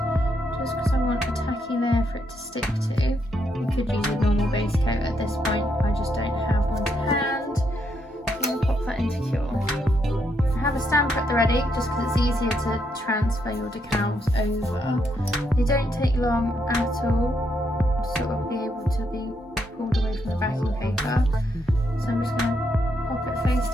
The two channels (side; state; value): both; normal; correlation 0.77